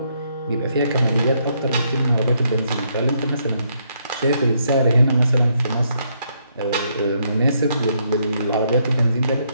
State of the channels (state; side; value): inverted; both; correlation -0.74